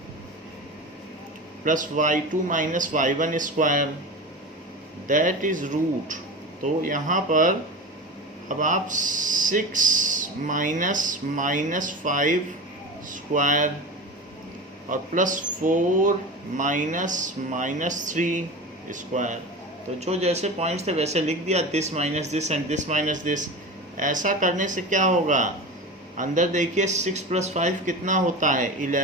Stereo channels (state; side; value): normal; both; correlation 0.28